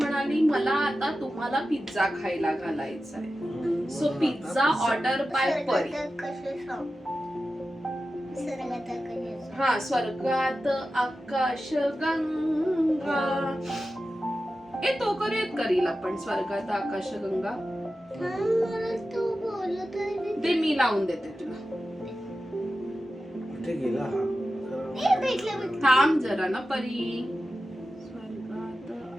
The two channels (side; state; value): both; normal; correlation 0.93